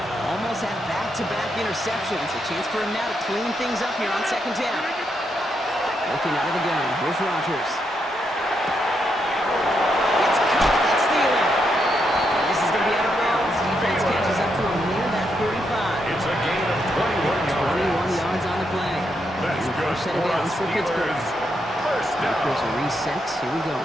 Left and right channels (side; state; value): both; normal; correlation 0.80